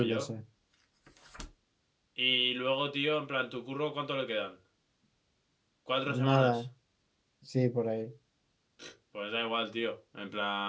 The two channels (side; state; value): both; identical; correlation 1.00